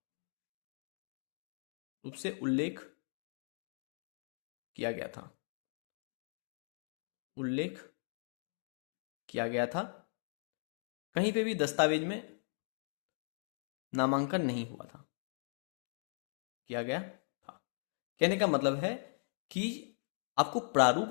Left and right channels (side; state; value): right; silent; digital silence